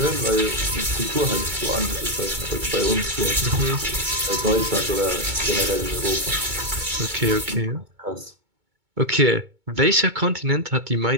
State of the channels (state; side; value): late; left; 2.2 ms